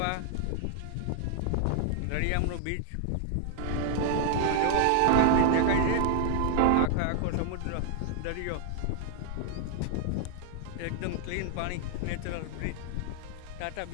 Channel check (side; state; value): both; different; correlation 0.00